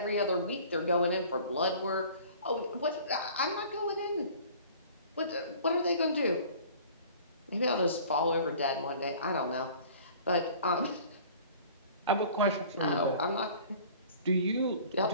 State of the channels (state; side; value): inverted; both; correlation -0.47